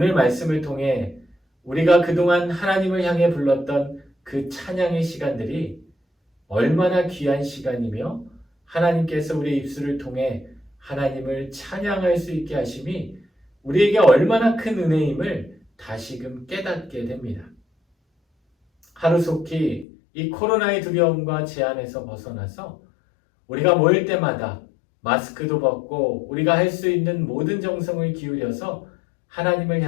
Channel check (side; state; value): right; drops out; at 19.9 s